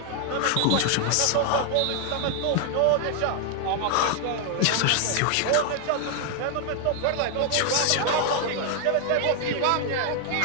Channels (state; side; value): different; both; correlation 0.00